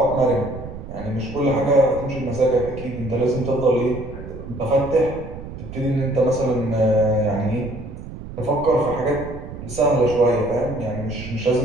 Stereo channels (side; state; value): right; noise; rumble, 11 dB below the sound